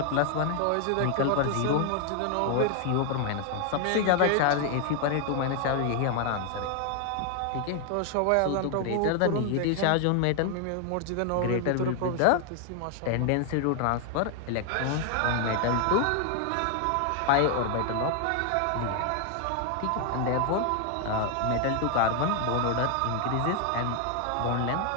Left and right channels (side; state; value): both; different; correlation 0.00